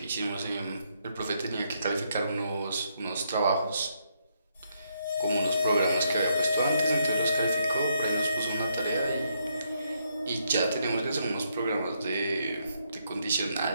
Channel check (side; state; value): both; inverted; correlation -0.76